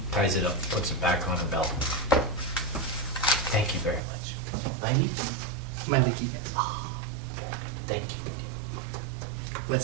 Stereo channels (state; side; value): drops out; left; at 4.0 s